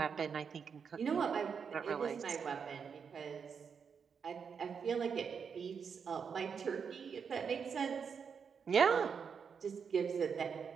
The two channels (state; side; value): quieter; left; 6.4 dB